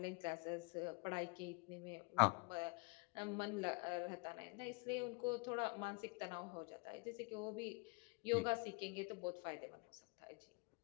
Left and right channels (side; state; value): right; quieter; 30.2 dB